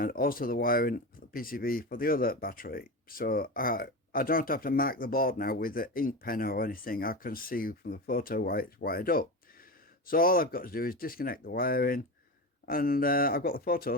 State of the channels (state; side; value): normal; both; correlation 0.23